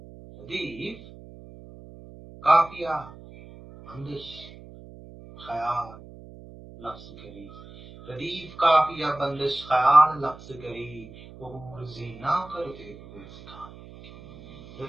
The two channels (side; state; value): right; noise; hum, 18 dB below the sound